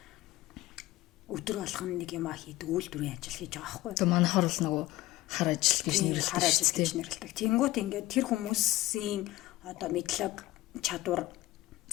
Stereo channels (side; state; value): right; quieter; 17.5 dB